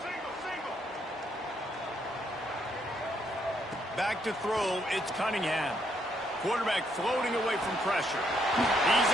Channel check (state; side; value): normal; both; correlation 0.73